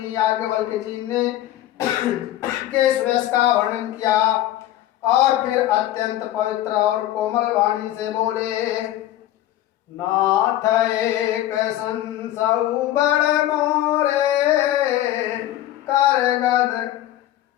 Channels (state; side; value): quieter; right; 13.6 dB